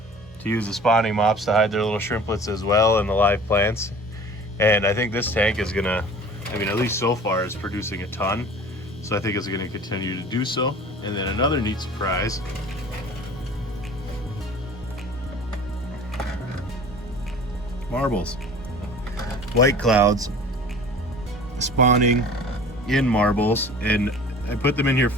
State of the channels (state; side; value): normal; both; correlation 0.44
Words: to use the spawning mops to hide their little shrimplets as well in the live plants. And I think this tank is gonna, I mean, at least so far, is producing a ton. So I think it's gonna continue to do so. And then another neat surprise. Marbles. White clouds spawning in marbles, and I put them in here